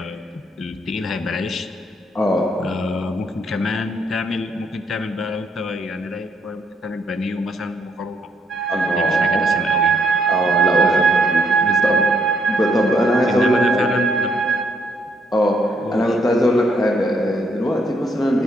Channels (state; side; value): normal; both; correlation 0.72